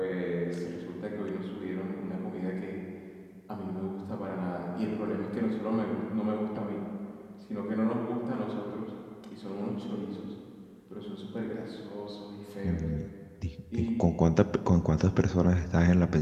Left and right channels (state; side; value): identical; both; correlation 1.00